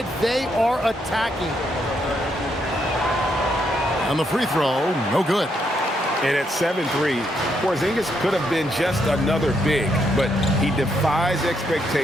they are attacking. And the free throw, no good. And at 7-3, Porzingis could have been just another big, but he defies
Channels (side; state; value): both; normal; correlation 0.77